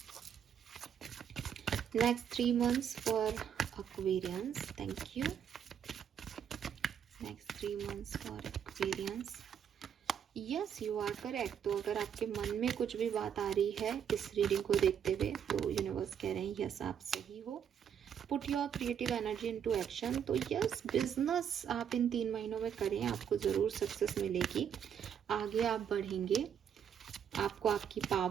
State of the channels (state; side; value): quieter; left; 8.4 dB